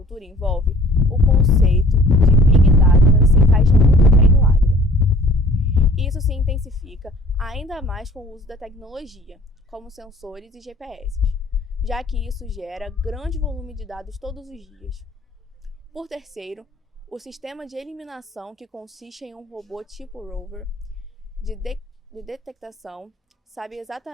envolve, o conceito de Big Data se encaixa muito bem no agro. Isso se intensifica ainda mais com o uso da tecnologia, como sensores e GPS, já que isso gera grande volume de dados todos os dias. Por terceiro, o sistema de eliminação, que consiste em um robô tipo rover de detectação, sabe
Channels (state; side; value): normal; both; correlation 0.53